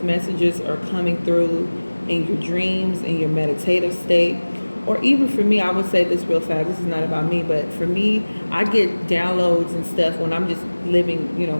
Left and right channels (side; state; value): both; inverted; correlation -1.00